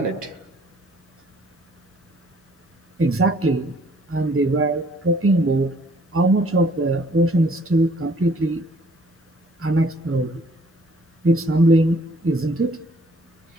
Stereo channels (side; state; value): both; normal; correlation 0.61